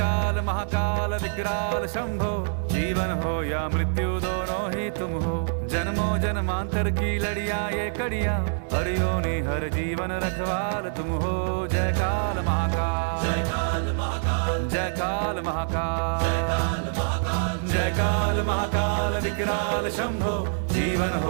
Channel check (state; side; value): silent; left; 61 dB below the other